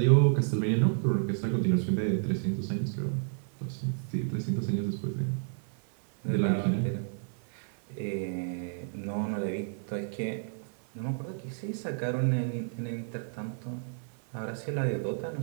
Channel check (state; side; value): silent; left; 57 dB below the other